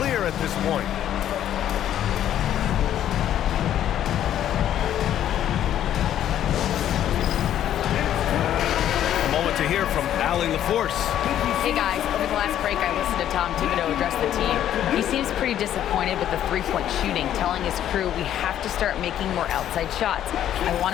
at this point. A moment to hear from Allie LaForce. Hey guys, over the last break I listened to Tom Thibodeau address the team. He seems pretty disappointed with the three-point shooting, telling his crew we have to start making more outside shots. I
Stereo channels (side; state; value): right; quieter; 11.1 dB